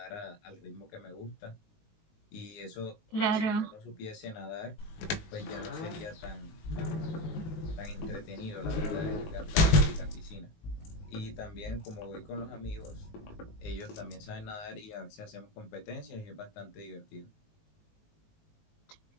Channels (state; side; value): late; right; 19 ms